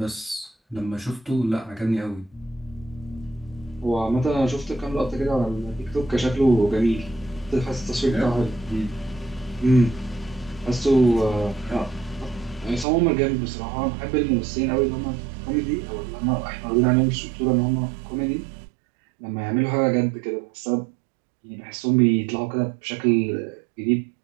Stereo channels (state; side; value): drops out; left; at 12.9 s